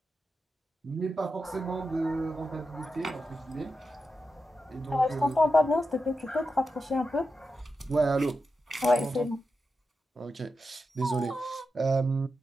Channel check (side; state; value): both; normal; correlation 0.89